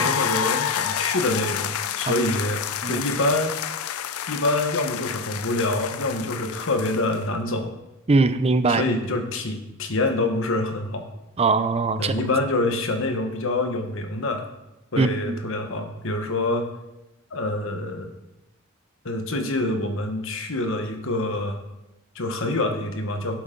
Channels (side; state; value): both; normal; correlation 0.21